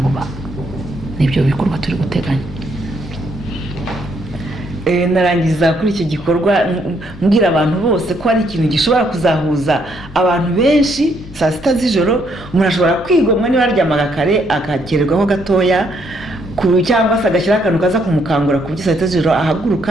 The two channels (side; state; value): both; normal; correlation 0.71